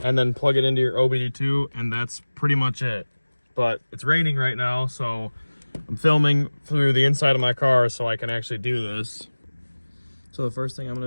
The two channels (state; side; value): inverted; both; correlation -1.00